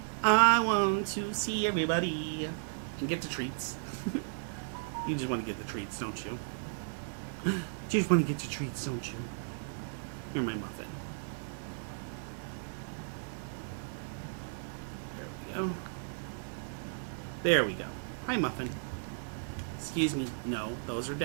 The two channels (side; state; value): left; silent; digital silence